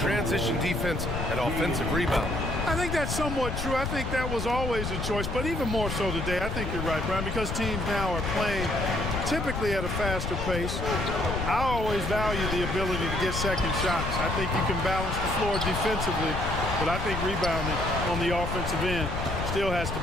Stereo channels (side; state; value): left; noise; rumble, 4 dB below the sound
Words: defense and offensive rebound. I think that's somewhat true. I think that was always a choice, but even more so today. I think you're right, Brian, because teams now are playing typically at a faster pace. I always value the ability to get second shots. I think you can balance the floor defensively, but I think rebounding on the offensive end still has to